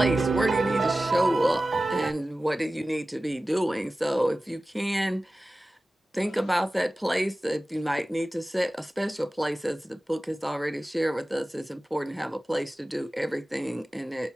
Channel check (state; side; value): normal; both; correlation 0.96